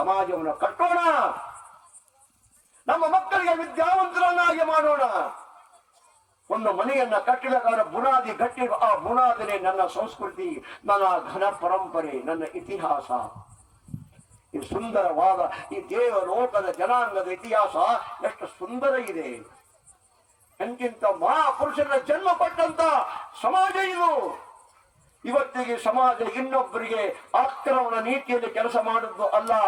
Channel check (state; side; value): identical; both; correlation 1.00